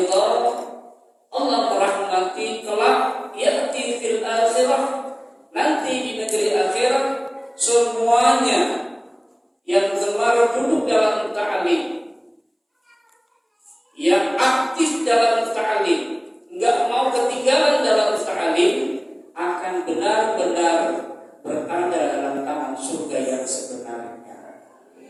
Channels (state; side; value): identical; both; correlation 1.00